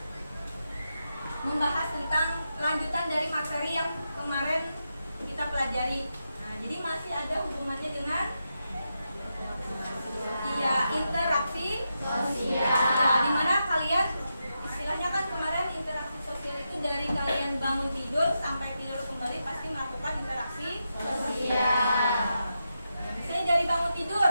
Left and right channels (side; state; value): both; inverted; correlation -0.87